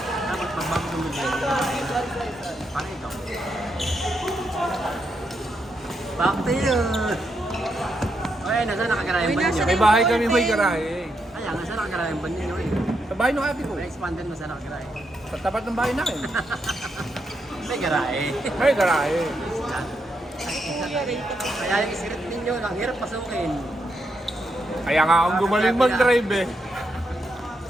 Dapat pagbago ng mga paano ito? Back to you! Okay, nasa nakagarayan ba ninyo? May bahay kami may garahe. Kaya, nasa nakagarayan ba ninyo eh? Sa bahay ng ate ko. May expanded mo sa nakagarayan. Sa tapat ng bahay namin. May garahe. May garahe. Kaya yung script ninyo, ang hirap pasukin. Kaya nga akong gumaling mag-drive eh.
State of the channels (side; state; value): both; normal; correlation 0.81